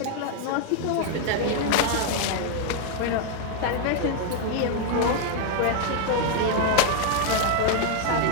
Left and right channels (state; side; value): different; both; correlation 0.00